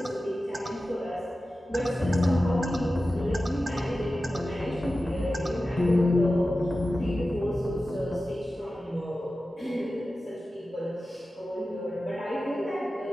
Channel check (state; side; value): normal; both; correlation 0.94